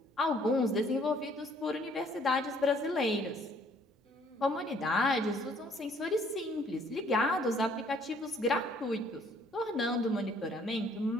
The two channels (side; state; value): both; normal; correlation 0.61